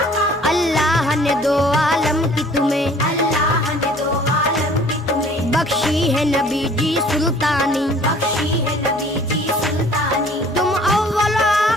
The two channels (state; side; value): normal; both; correlation 0.53